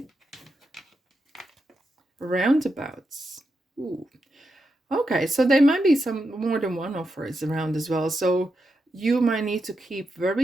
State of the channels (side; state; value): both; normal; correlation 0.86